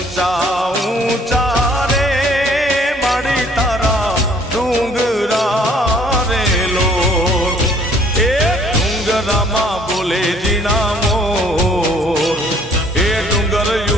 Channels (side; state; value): both; normal; correlation 0.59